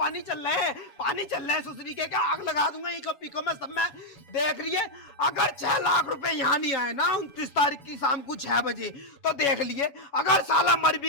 चल रहे हैं, पानी चल रहे हैं। सुसरी के क्या आग लगा दूंगा इको पिको में सब में। देख रही है, अगर 6 लाख रुपए यहाँ नहीं आए ना 29 तारीख की शाम को 6 बजे, तो देख लिए अगर साला मर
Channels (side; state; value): right; late; 7.2 ms